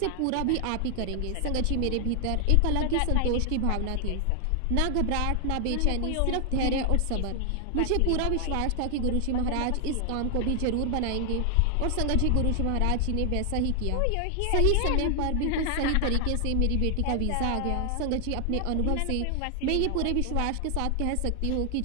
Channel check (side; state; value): both; different; correlation 0.00